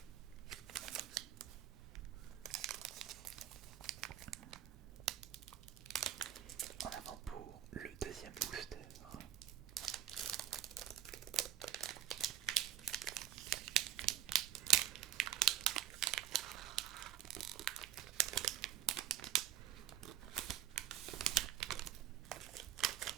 En avant pour le deuxième booster.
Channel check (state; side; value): quieter; left; 11.3 dB